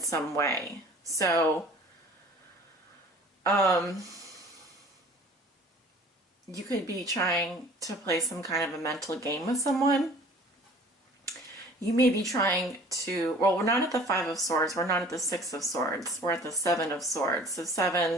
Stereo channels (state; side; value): normal; both; correlation 0.48